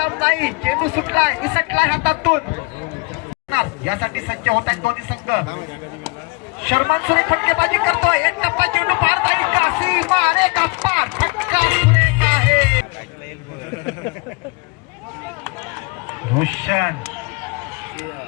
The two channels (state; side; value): quieter; right; 28.4 dB